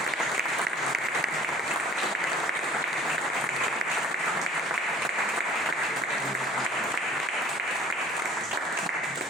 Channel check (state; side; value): normal; both; correlation 0.50